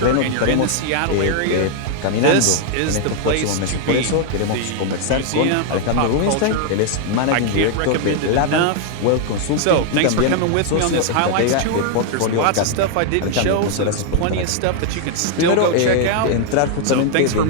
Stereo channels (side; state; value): both; different; correlation 0.00